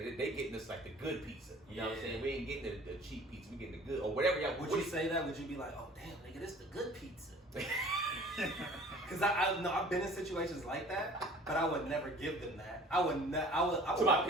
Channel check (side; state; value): both; normal; correlation 0.48